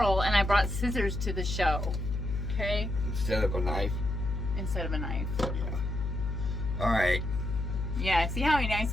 and I brought scissors to the show. Okay? Instead of a knife? Instead of a knife. Yeah. All right. Yeah, see how nice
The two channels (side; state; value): left; noise; hum, 3 dB below the sound